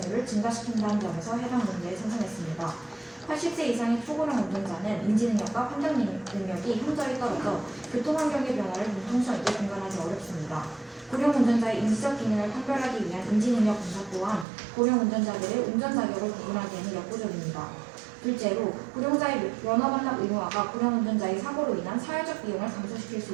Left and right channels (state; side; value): drops out; left; at 14.5 s